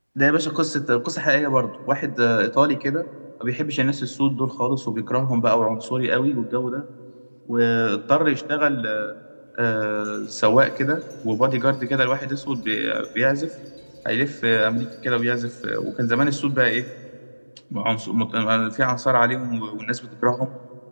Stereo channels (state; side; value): inverted; both; correlation -1.00